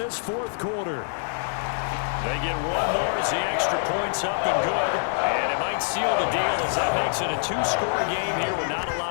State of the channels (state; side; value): silent; right; digital silence